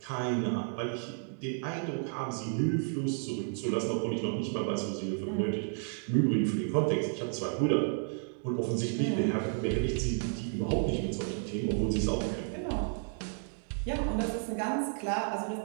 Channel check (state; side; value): silent; left; 56 dB below the other